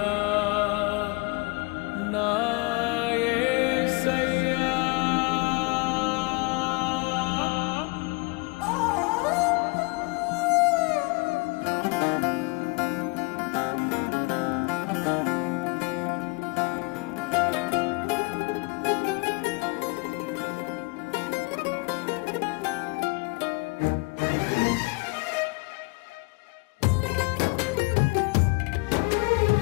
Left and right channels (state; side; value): quieter; right; 28.5 dB